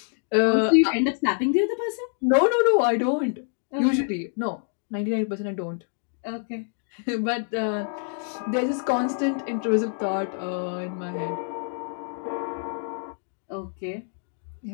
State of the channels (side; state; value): right; silent; 61 dB below the other